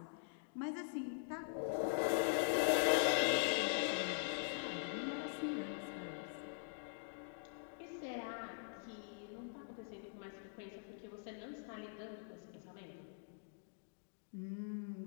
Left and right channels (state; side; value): silent; right; digital silence